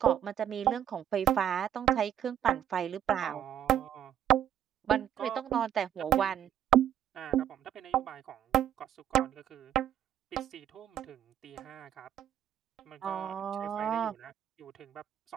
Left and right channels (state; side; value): quieter; left; 10.4 dB